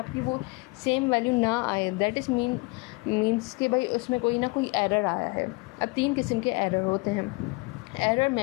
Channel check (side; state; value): right; quieter; 27.0 dB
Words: वो सेम वैल्यू ना आए, दैट इज़ मीन्स कि भाई उसमें कोई ना कोई एरर आया है। अब 3 किस्म के एरर होते हैं। एरर